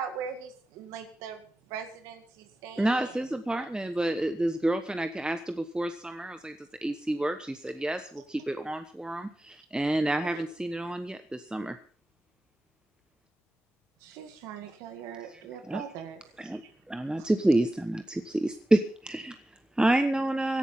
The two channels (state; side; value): normal; both; correlation 0.93